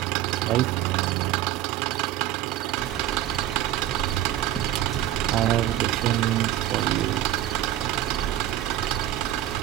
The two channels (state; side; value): quieter; left; 13.2 dB